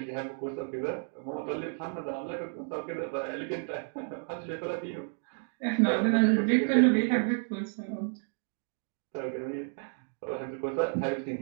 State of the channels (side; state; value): left; silent; 57 dB below the other